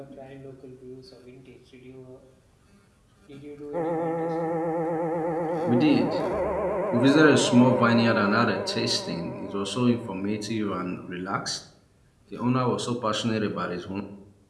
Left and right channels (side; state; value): both; identical; correlation 1.00